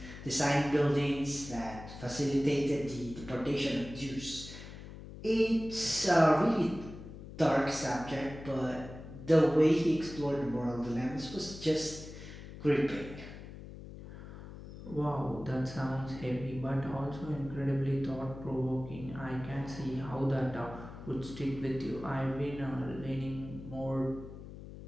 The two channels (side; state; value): left; noise; hum, 13 dB below the sound